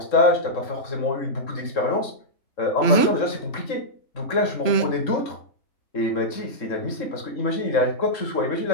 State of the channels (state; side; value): late; right; 3.7 ms